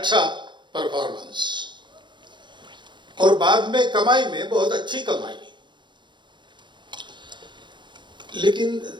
परफॉर्मेंस और बाद में कमाई में बहुत अच्छी कमाई, लेकिन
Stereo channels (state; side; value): late; left; 0.23 ms